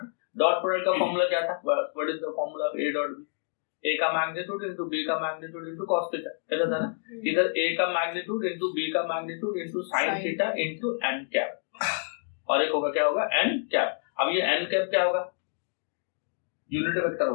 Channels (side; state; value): right; silent; digital silence